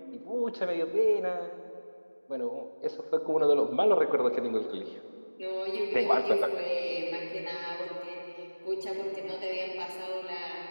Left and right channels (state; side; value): inverted; both; correlation -1.00